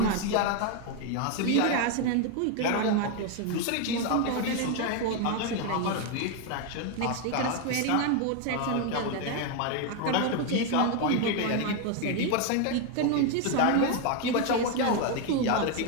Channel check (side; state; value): both; different; correlation 0.01